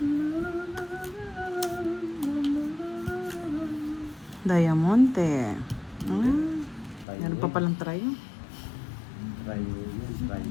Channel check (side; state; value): right; drops out; at 7.1 s